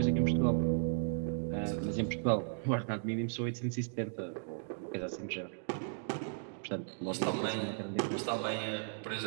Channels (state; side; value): silent; left; digital silence